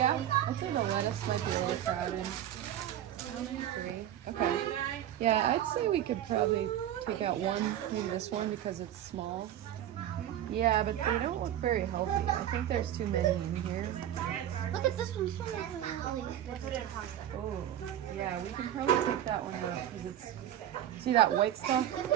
I think the lettuce might be a little crowded. How many? 3. Okay. Yeah, I'd say we could probably take out one, maybe this one because it's small. Yeah, but they don't look very healthy. I think there's too many in here. Look at this one. This one is really put it in hot. Oh, yeah, we can probably take that one out because it's, see that white stuff?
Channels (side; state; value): left; quieter; 11.5 dB